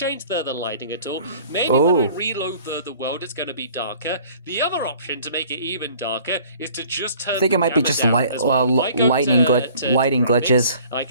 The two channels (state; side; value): inverted; both; correlation -0.51